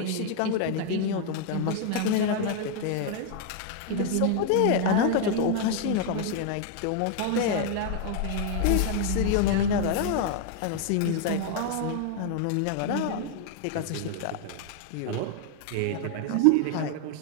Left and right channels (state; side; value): different; both; correlation 0.00